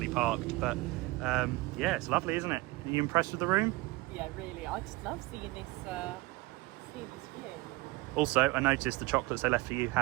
parked. But yeah, it's lovely, isn't it? Are you impressed with the room? Yeah, really. I just love seeing this view. Also, I noticed the chocolates they left for you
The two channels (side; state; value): left; quieter; 21.3 dB